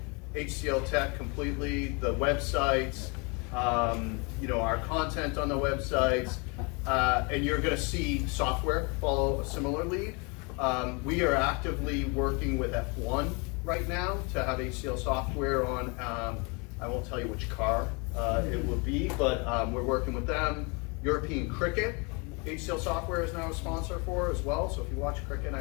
HCL Tech completely, the websites, our content on the websites, and you're going to see software follow a similar lead. We are actively working with F1 right now to have HCL software on, I won't tell you which car it will be, but we're working with them. European Cricket, HCL software is now a sponsor for as well, so if you watch cricket,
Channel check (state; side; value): quieter; right; 31.3 dB